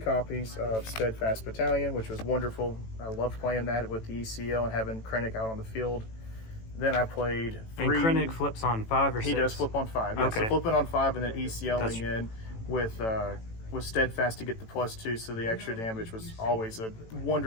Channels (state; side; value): late; right; 18 ms